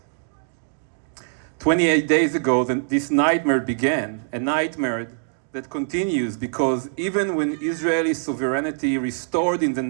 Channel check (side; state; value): left; silent; digital silence